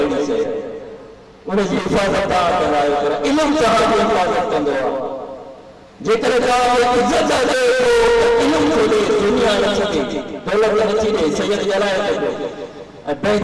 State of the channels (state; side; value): identical; both; correlation 1.00